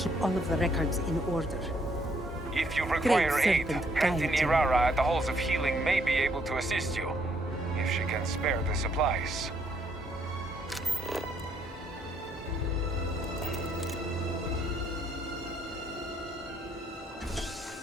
all of the records in order. If you require Great aid, serpent, Auntie guide you. Nirara at the Halls of Healing may be able to assist you, if she can spare the supplies.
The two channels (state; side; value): normal; both; correlation 0.70